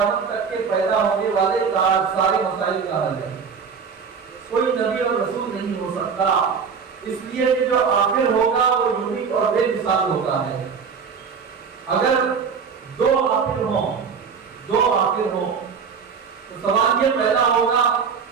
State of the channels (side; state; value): left; quieter; 6.1 dB